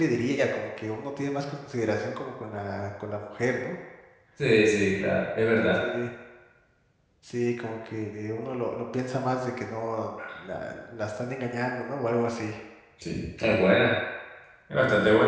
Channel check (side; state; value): both; identical; correlation 1.00